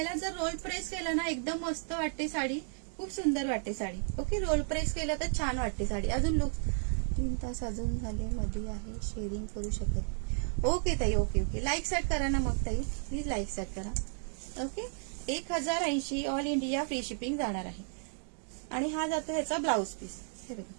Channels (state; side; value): silent; left; 56 dB below the other